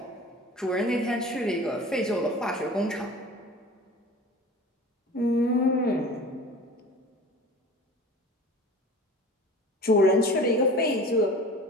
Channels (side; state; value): both; normal; correlation 0.39